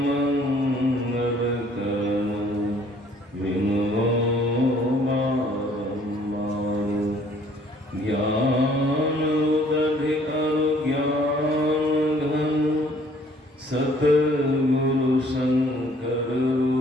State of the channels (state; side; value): normal; both; correlation 0.59